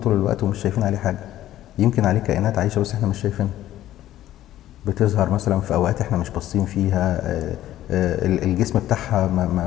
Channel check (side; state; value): right; quieter; 13.4 dB